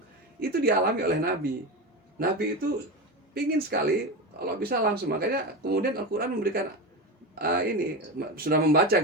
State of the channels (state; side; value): normal; both; correlation 0.21